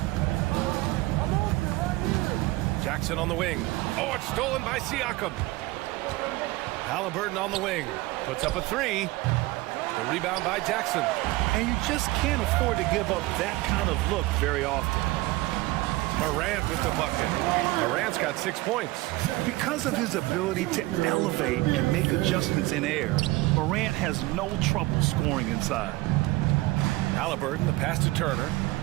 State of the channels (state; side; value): quieter; left; 20.0 dB